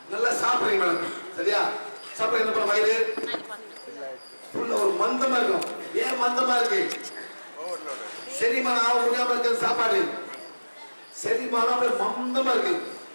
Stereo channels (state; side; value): inverted; both; correlation -1.00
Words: நல்லா சாப்பிடுறீங்க மேடம். சரியா சாப்பிட என்ன பண்ண வயிறு ஃபுல்லா ஒரு மந்தமா இருக்கும். ஏன் மந்தமா இருக்கு? செரிமானம் ஆக முடியாம இருக்கு. சாப்பாடு செரிமானம் மந்தமா இருக்கு.